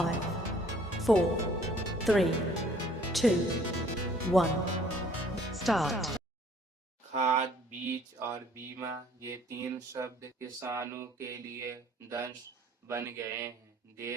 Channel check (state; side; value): normal; both; correlation 0.57